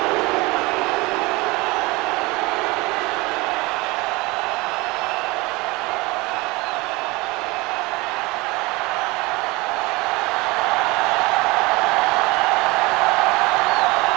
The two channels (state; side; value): quieter; left; 23.5 dB